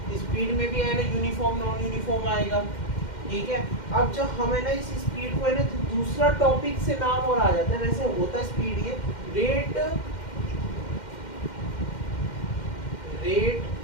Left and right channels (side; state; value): right; late; 2.1 ms